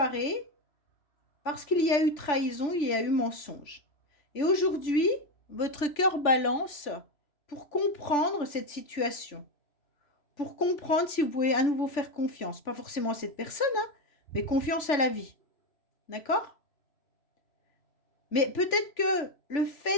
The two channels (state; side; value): late; right; 3.4 ms